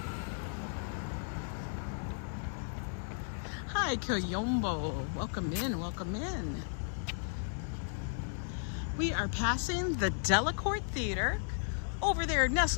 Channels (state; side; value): silent; right; 55 dB below the other